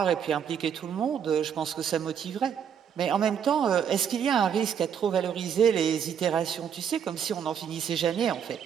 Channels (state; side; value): quieter; left; 8.0 dB